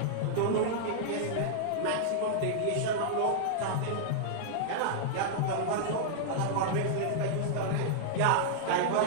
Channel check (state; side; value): different; both; correlation -0.01